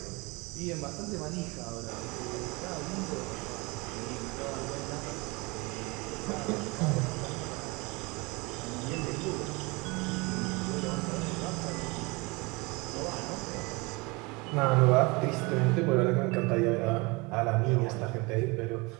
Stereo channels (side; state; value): left; quieter; 26.1 dB